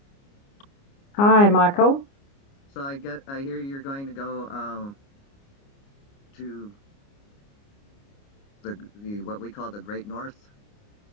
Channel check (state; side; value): late; right; 29 ms